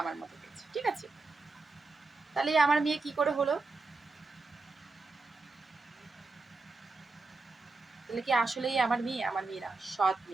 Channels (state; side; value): quieter; left; 3.7 dB